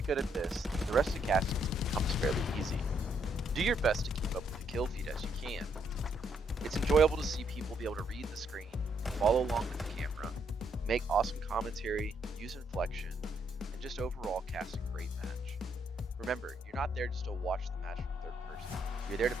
good at this, the rest of casting becomes fairly easy. Do your best to keep up with the kill feed as you can. It's enjoyable to see people be able to read the screen, follow along with the camera, make awesome commentary, use inflection, and just overall cast a great match. Remember, you're not there just to watch the match from third person, you're there to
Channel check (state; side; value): normal; both; correlation 0.73